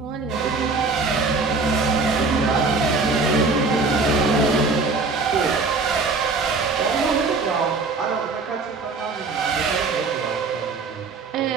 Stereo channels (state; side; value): quieter; left; 4.0 dB